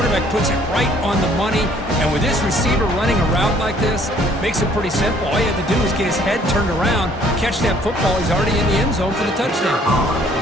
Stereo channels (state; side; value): normal; both; correlation 0.60